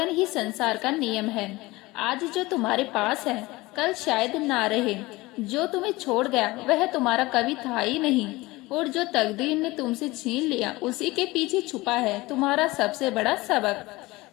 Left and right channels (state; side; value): quieter; right; 20.9 dB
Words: ही संसार का नियम है। आज जो तुम्हारे पास है कल शायद ना रहे। जो तुम्हें छोड़ गया वह तुम्हारा कभी था ही नहीं, और जो तकदीर ने तुमसे छीन लिया उसी के पीछे छुपा है तुम्हारा सबसे बड़ा सबक।